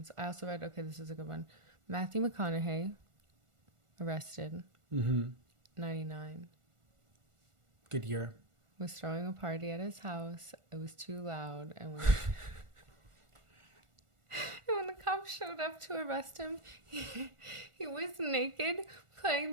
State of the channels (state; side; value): late; left; 1.4 ms